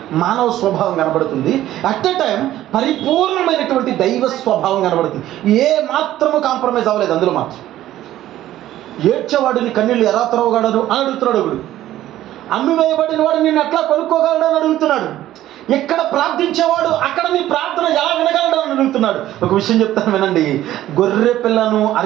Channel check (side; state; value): left; quieter; 13.6 dB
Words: మానవ స్వభావం కనబడుతుంది. అట్ ఎ టైం పరిపూర్ణమైనటువంటి దైవ స్వభావం కనబడుతుంది. ఏ మాత్రము కాంప్రమైజ్ అవ్వలేదు అందులో మాత్రం. ఏడ్చేవాడిని కన్నీళ్ళు ఎలా త్రవగలడు అని అడుగుతున్నాడు ఒకడు. అమ్మివేయబడిన వాడు నిన్ను ఎట్లా కొనుక్కోగలడు అని అడుగుతున్నాడు. ఎక్కడ ప్రార్థించేవాడు అక్కడ నీ ప్రార్థన ఎలా వినగలడు అని అడుగుతున్నాడు. ఒక విషయం చెప్తాను వినండి. గొర్రె పిల్లను